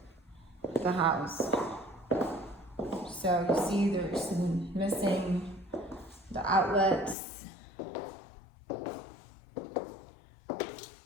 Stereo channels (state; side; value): drops out; right; at 7.2 s